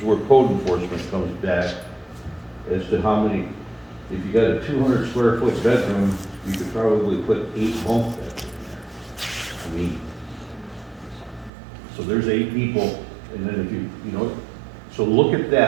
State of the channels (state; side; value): drops out; left; at 11.5 s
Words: where code enforcement comes back as to how many, if you got a 200 square foot bedroom, you could probably put 8 bunk beds in there. I mean, so there's 8 people, and then if you know, so look at